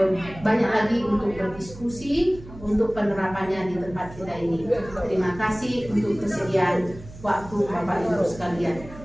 banyak lagi untuk berdiskusi untuk penerapannya di tempat kita ini. Terima kasih untuk kesediaan waktu Bapak Ibu sekalian.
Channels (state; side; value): noise; right; hum, 16 dB below the sound